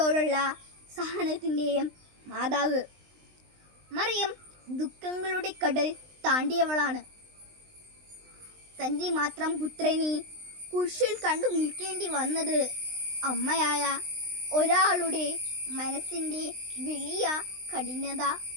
സഹനത്തിൻ്റെയും മാതാവ് മറിയം ദുഃഖങ്ങളുടെ കടൽ താണ്ടിയവളാണ്. തൻ്റെ മാത്രം പുത്രനെ കുരിശിൽ കണ്ടു നിൽക്കേണ്ടി വന്നത് അമ്മയായ ഒരാളുടെ മനസ്സിൻ്റെ വലിയ കഠിനത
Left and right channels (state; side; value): late; left; 20 ms